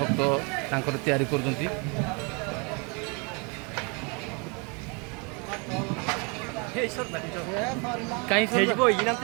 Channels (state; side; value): quieter; left; 32.3 dB